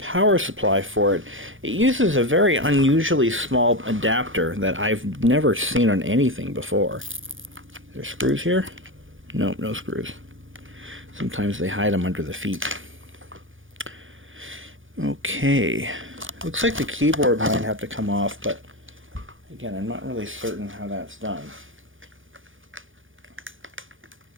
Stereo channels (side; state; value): left; late; 0.58 ms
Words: supply for it. It uses a very unusually small adapter that I've never seen on anything before. Are there screws here? Nope, no screws. Sometimes they hide them under the feet. Okay. Looks like the keyboard might have to come off, but again, I'm not really certain how that's done.